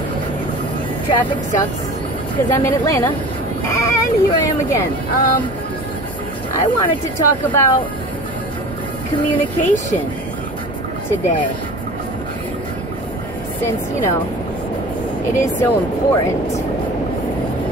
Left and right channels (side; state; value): both; normal; correlation 0.39